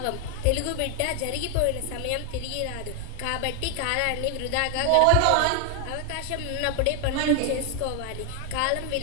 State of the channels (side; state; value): both; different; correlation 0.00